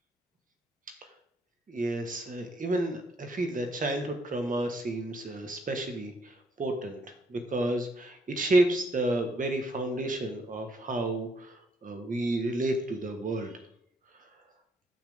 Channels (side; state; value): both; normal; correlation 0.71